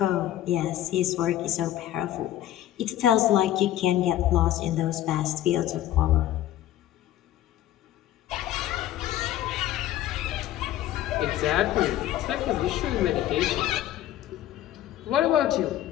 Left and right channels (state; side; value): quieter; right; 12.9 dB